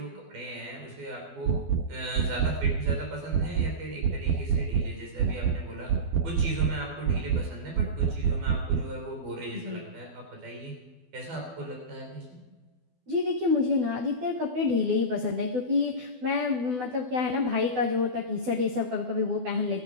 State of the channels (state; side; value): late; left; 12 ms